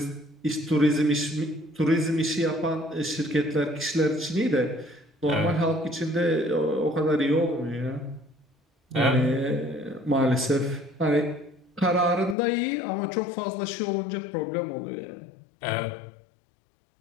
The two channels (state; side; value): drops out; right; at 12.4 s